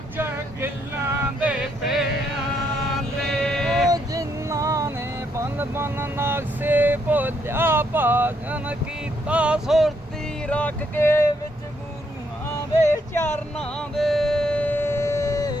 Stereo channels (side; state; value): both; normal; correlation 0.74